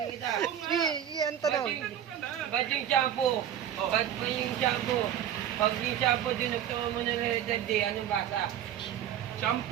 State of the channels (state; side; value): quieter; left; 10.3 dB